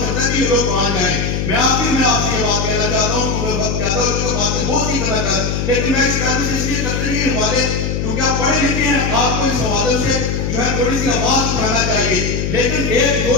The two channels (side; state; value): left; noise; hum, 1 dB below the sound